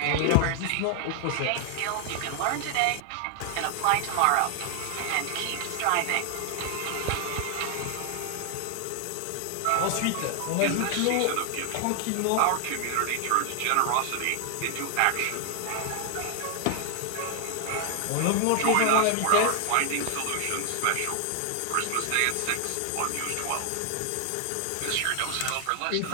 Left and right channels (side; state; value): both; different; correlation 0.00